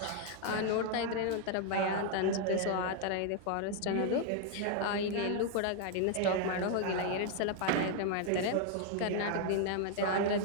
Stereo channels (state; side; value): different; both; correlation 0.00